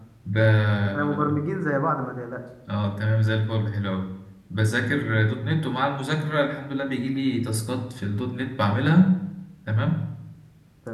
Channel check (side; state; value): both; identical; correlation 1.00